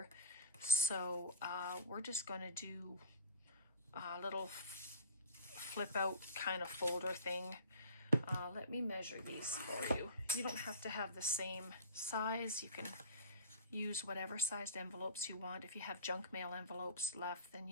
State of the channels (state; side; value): inverted; both; correlation -0.34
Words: So we're just going to do a little flip out kind of folder thing. Let me measure these for you. You don't have to have the same size. You can use whatever sized envelopes you want. If you have junk mail envelopes left, then